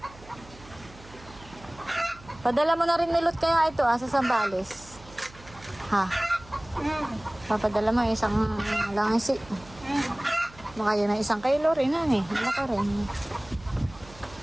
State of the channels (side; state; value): right; noise; hum, 21 dB below the sound